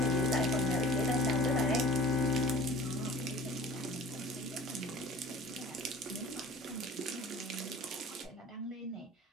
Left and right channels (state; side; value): normal; both; correlation 0.43